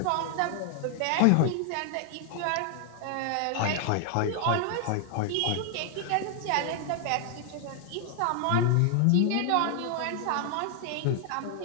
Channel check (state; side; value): different; both; correlation 0.00